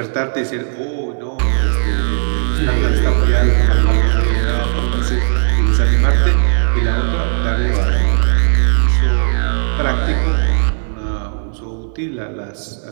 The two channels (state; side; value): silent; left; digital silence